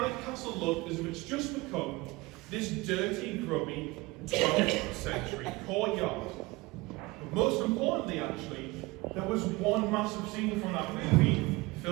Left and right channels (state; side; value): quieter; left; 22.3 dB